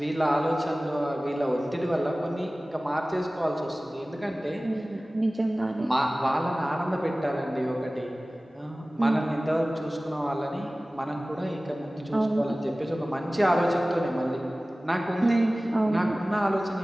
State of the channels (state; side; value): normal; both; correlation 0.98